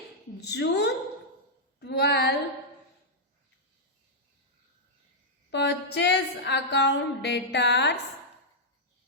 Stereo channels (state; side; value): normal; both; correlation -0.07